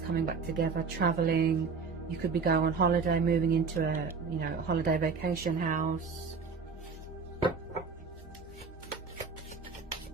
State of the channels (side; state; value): left; quieter; 5.2 dB